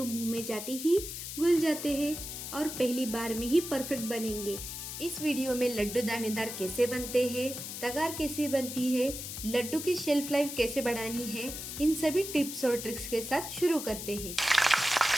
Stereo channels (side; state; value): left; noise; hiss, 7 dB below the sound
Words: मुंह में जाते ही घुल जाते हैं और पहली बार में ही परफेक्ट बनेंगे। इस वीडियो में लड्डू दानेदार कैसे बनते हैं, तगार कैसे बनती है, लड्डू की शेल्फ लाइफ कैसे बढ़ानी है, इन सभी टिप्स और ट्रिक्स के साथ शुरू करते हैं।